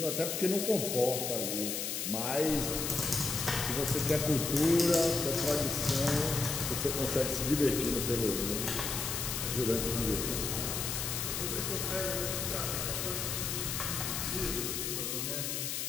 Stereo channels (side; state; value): left; noise; hiss, 2 dB below the sound